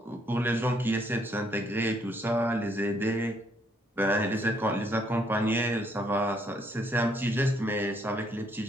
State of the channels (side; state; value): both; normal; correlation 0.69